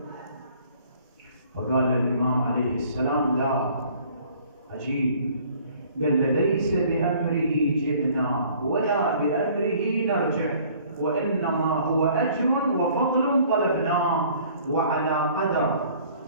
فقال الإمام عليه السلام: لا، عجيب. قال: ليس بأمره جئنا ولا بأمره نرجع، وإنما هو أجر وفضل طلبناه، وعلى قدر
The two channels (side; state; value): both; inverted; correlation -0.55